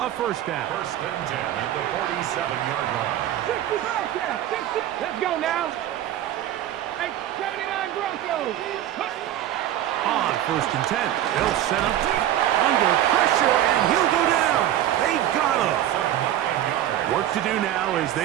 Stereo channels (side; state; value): left; quieter; 12.3 dB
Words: first down. First and 10 at the 47-yard line. 60 Bearcat, 60. Let's go now. Hey, 79 Broncos. On first and 10, they'll set up under pressure, and he'll go down. They got him. Work to do now as